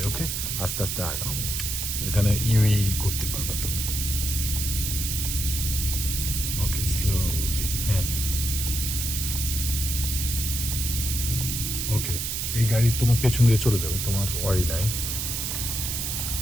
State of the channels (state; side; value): noise; right; hiss, 2 dB below the sound